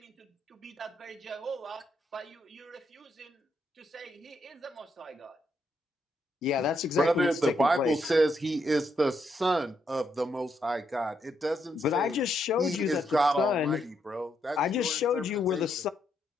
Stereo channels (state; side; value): normal; both; correlation 0.78